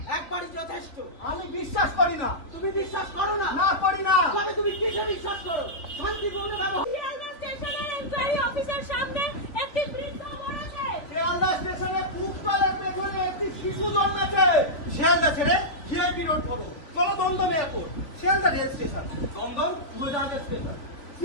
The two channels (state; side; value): late; right; 3.5 ms